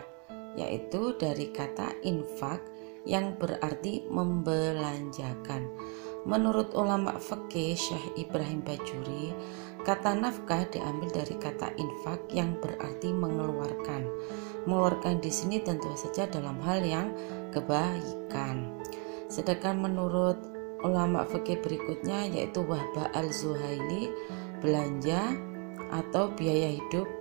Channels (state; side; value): quieter; left; 34.3 dB